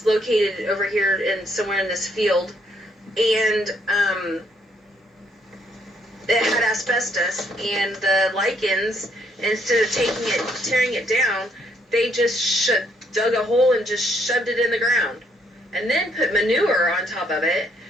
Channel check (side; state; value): both; normal; correlation 0.70